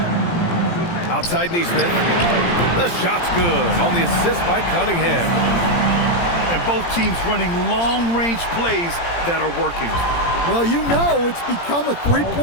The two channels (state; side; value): late; right; 17 ms